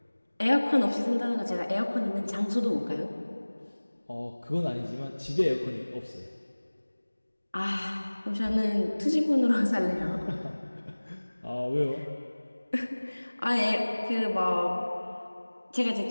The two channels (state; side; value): inverted; both; correlation -1.00